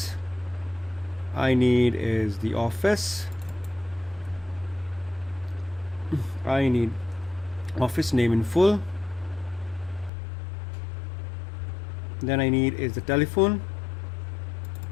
I need is the office. I need office name in full. Then I need is the telephone,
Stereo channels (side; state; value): right; drops out; at 10.1 s